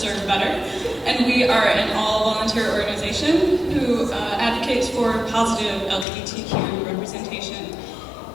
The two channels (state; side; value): drops out; right; at 6.1 s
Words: Better, and we are an all-volunteer organization who advocates for positive LGBTQ representation